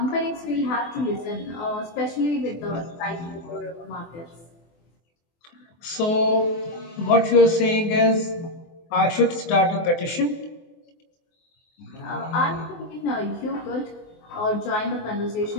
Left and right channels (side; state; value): right; late; 24 ms